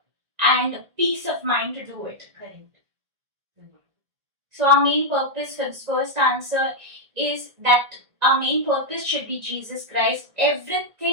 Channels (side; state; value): left; late; 1.7 ms